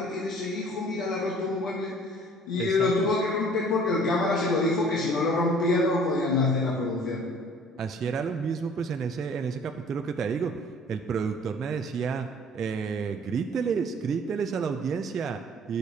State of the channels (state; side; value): normal; both; correlation 0.52